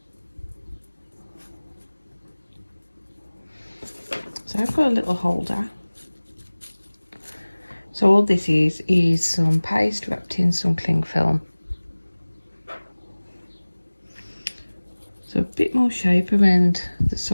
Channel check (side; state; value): both; inverted; correlation -1.00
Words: So I've got a little holder. So all this is some paste wrapped in some cling film. So a bit more shape around the